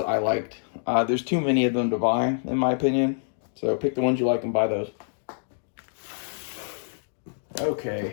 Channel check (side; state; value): right; silent; digital silence